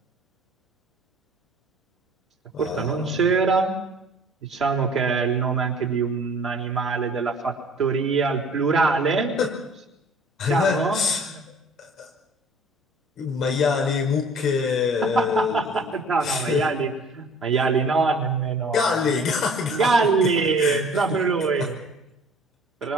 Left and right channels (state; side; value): normal; both; correlation 0.50